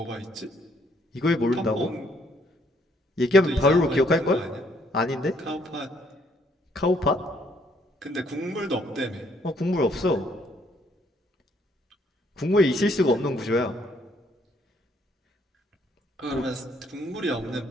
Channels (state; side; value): normal; both; correlation 0.67